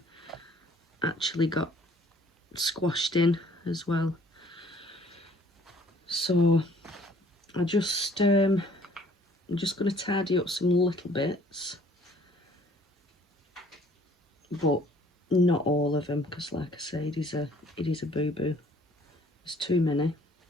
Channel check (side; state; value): both; normal; correlation 0.57